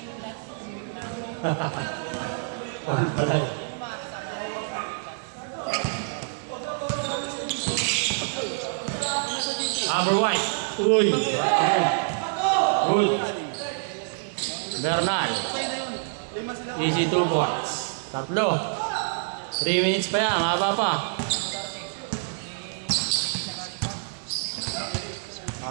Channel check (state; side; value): silent; left; digital silence